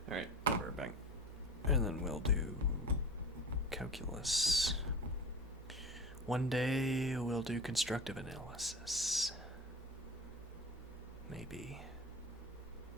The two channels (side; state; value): both; normal; correlation 0.33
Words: Alright, I'll be right back. And then we'll do calculus. One day we'll do constructive analysis. Maybe.